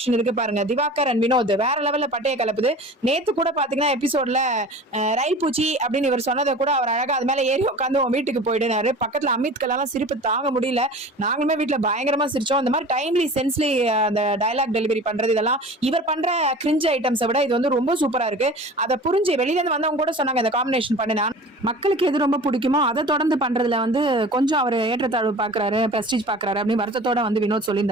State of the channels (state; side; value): normal; both; correlation 0.40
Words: இருக்கு பாருங்க, திவாகர் அண்ட் வினோத் வேற லெவல்ல பட்டைய கலப்புது. நேத்து கூட பாத்தீங்கன்னா எபிசோட்ல ரயில் பூச்சி அப்படின்னு இவர் சொன்னதை கூட அவர் அழகா அது மேல ஏறி உட்காந்து உன் வீட்டுக்கு போயிடுனாரு. பக்கத்துல அமித்கெல்லாம் சிரிப்பு தாங்க முடியல. நாங்களுமே வீட்டுல பயங்கரமா சிரிச்சோம். இந்த மாதிரி டைம்லி சென்ஸ்லி அந்த டயலாக் டெலிவரி பண்றது இதெல்லாம் இவர் பண்ற கிரிஞ்ச் ஐட்டம்ஸை விட இது வந்து ரொம்ப சூப்பரா இருக்கு. அதை புரிஞ்சு வெளியில இருந்து வந்தவங்க கூட சொன்னாங்க இந்த காம்பினேஷன் பண்ணினா மக்களுக்கு எது ரொம்ப பிடிக்குமோ அதை தொடர்ந்து பண்றதுல வந்து கொஞ்சம் அவர் ஏற்றத்தாழ்வு பாக்குறாரு, பிரஸ்டீஜ் பாக்குறாரு அப்படின்னு வருத்தத்தோட வந்து வினோத்